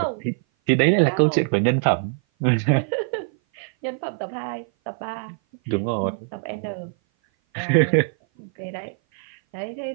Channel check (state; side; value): silent; left; 57 dB below the other